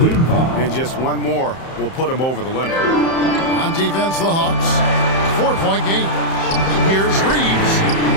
and just one more will put him over the limit. On defense, the Hawks, 4-point game. Here's Reeves.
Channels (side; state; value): right; late; 31 ms